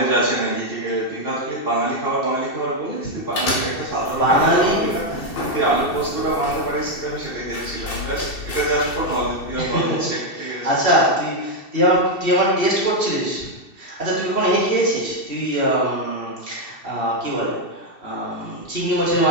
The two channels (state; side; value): late; right; 2.7 ms